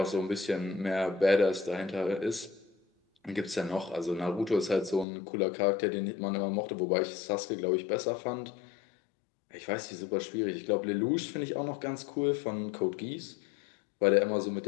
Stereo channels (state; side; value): drops out; right; at 5.1 s